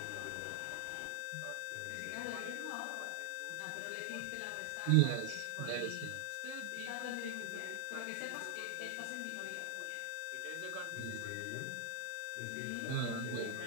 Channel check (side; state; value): both; different; correlation 0.00